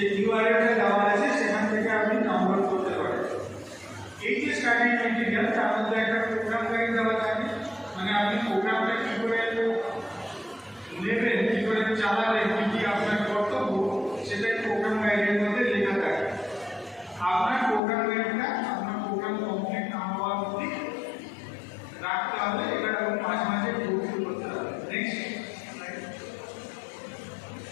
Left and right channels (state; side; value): drops out; right; at 17.8 s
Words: ইউআরএলটা দেওয়া আছে সেখান থেকে প্রোগ্রামটা কী করে নেবেন, কী করে চালাবেন, কী কী আপনার কর্তব্য, সেটাই প্রোগ্রাম গাইডের মধ্যে লেখা থাকে। আপনার প্রোগ্রাম গাইডটা আপনার প্রোগ্রাম কমপ্লিট না হওয়ার অবধি রাখতে হবে, এটা এবং মাঝে মাঝে প্রস্তুত করতে হবে। নেক্সট